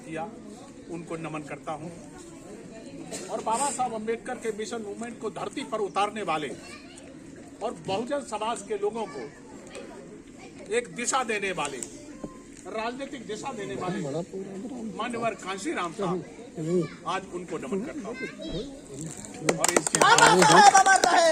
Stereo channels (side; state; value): both; identical; correlation 1.00